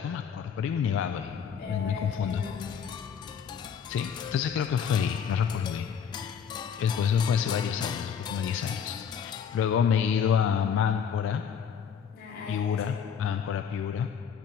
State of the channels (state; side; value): quieter; right; 7.5 dB